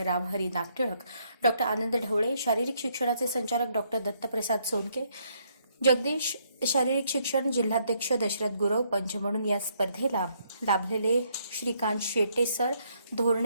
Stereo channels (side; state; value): both; inverted; correlation -0.72